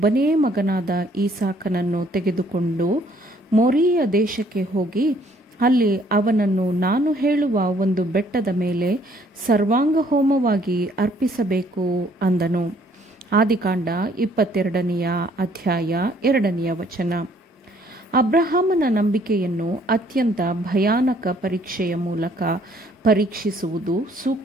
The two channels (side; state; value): both; normal; correlation 0.62